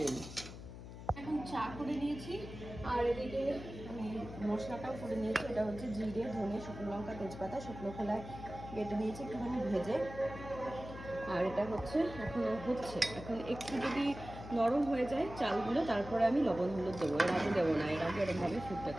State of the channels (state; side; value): noise; left; hum, 12 dB below the sound